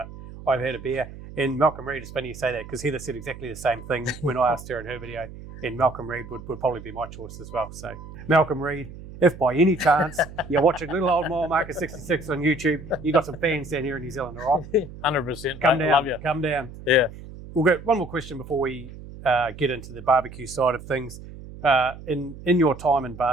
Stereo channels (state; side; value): noise; right; hum, 14 dB below the sound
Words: I've had a beer. And Malcolm Reed, it's funny you say that, because Heather said exactly the same thing when I asked her in her video. And Malcolm Reed would probably be my choice as well. So Malcolm Reed, if by any chance you're watching Little Old Mile Marker 66 on YouTube, you got some fans down here in New Zealand, all right? 100%. Come down, love you. Come down. Yeah. We'll go one more question before we get into the barbecue side of things. In your time in